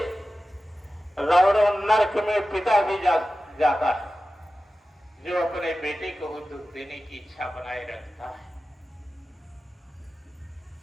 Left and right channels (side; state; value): both; normal; correlation 0.94